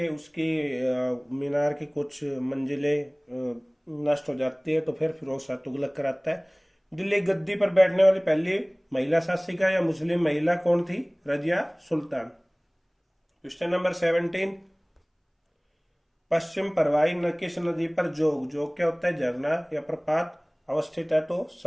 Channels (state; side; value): identical; both; correlation 1.00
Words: उसकी मीनार की कुछ मंजिलें नष्ट हो जाती है, तो फिर फिरोज शाह तुगलक कराता है। दिल्ली गद्दी पर बैठने वाली पहली महिला शासिका या मुस्लिम महिला कौन थी? रजिया सुल्तान। क्वेश्चन नंबर 17, पश्चिम परवाई न किस नदी पर जोग, जोग क्या होता है? झरना या प्रपात अवस्थित है? तो